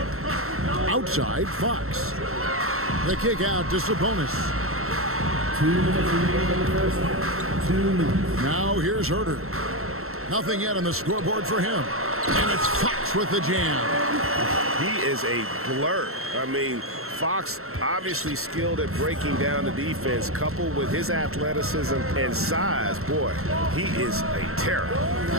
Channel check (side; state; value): left; late; 0.62 ms